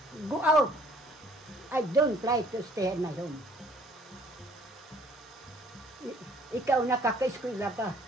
Go out. I don't try to stay in my home. Ikaw nakaka-eskwela ka.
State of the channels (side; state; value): both; normal; correlation 0.59